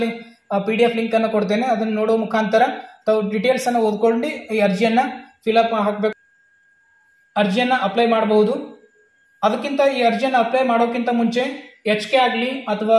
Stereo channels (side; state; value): both; identical; correlation 1.00